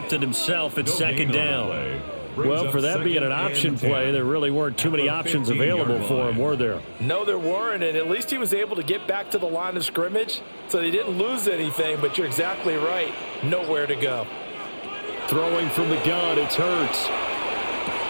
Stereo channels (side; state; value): both; inverted; correlation -1.00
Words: it himself at 2nd down. Well, for that being an option play, there really weren't too many options available for him, were there? No, there weren't, and at least he was able to get back to the line of scrimmage, so they didn't lose anything, but you're exactly right. Nowhere to go. Throwing from the gun, it's Hurts.